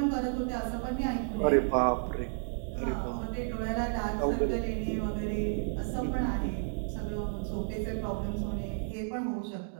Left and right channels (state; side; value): silent; left; digital silence